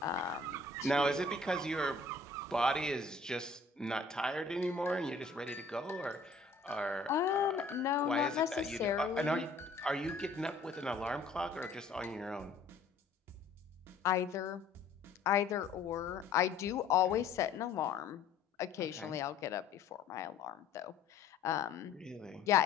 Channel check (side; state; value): right; quieter; 4.1 dB